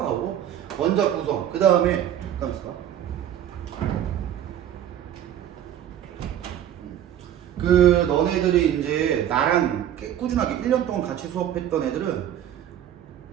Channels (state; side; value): quieter; left; 10.7 dB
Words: 원자 구성, 그 다음에 잠깐만 있어봐. 그 너네들이 이제 나랑 꾸준하게 1년 동안 같이 수업했던 애들은